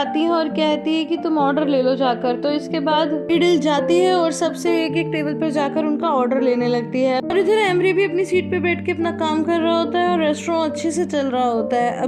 है और कहती है कि तुम ऑर्डर ले लो जाकर। तो इसके बाद यीडल जाती है और सबसे एक एक टेबल पर जाकर उनका ऑर्डर लेने लगती है और इधर एमरे भी अपनी सीट पे बैठ के अपना काम कर रहा होता है और रेस्टोरेंट अच्छे से चल रहा होता है।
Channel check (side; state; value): both; identical; correlation 1.00